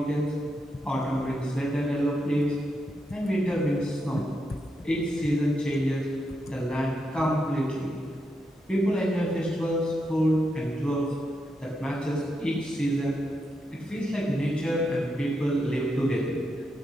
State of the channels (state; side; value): normal; both; correlation 0.83